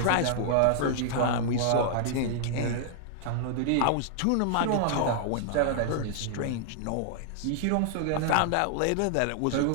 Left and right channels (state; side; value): different; both; correlation -0.01